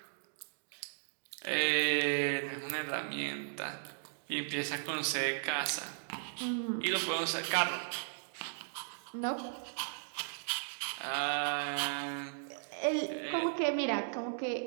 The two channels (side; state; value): left; silent; digital silence